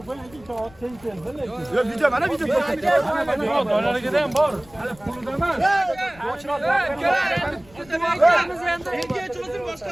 ben iki saat sen Yok video bana video. Yok, dolara gideyim bor.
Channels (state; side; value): noise; left; rumble, 24 dB below the sound